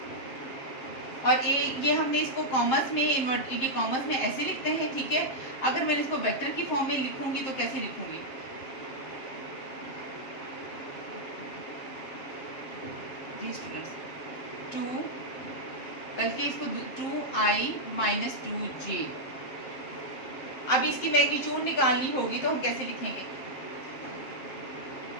और ये हमने इसको कॉमर्स में इन्वर्ट ये कॉमर्स में ऐसे लिखते हैं। ठीक है, अगर मैं इसको वेक्टर की फॉर्म में लिखूंगी तो कैसे लिखूंगी, जी स्टूडेंट्स, 2 बल्कि इसको 2i माइनस 2j। अब इसकी मैग्नीट्यूड निकालनी होगी तो हम कैसे लिखेंगे,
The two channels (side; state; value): right; late; 7.5 ms